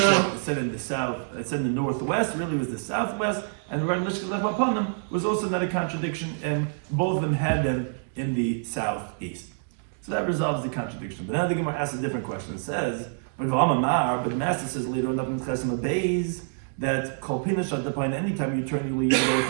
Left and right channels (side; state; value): left; silent; digital silence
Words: it said in the south, it said in the northwest, really was the southwest, and regarding Lishkas Lechem Apanim was also not a contradiction, and both of them had them in the southeast. So that resolves the contradiction. But now the Gemara asks a different question. It says, but the master says later on in Chesem Beis that Kol Pinish at the point, anytime you turn your lead,